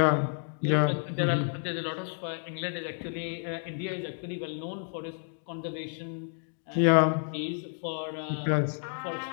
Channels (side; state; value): right; silent; digital silence